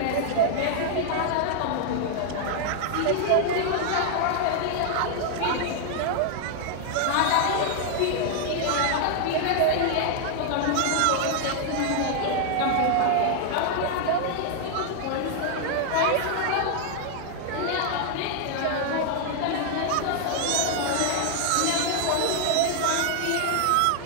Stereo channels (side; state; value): both; different; correlation 0.00